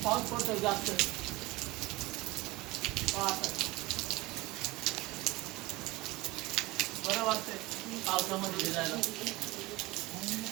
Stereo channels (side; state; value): left; quieter; 19.6 dB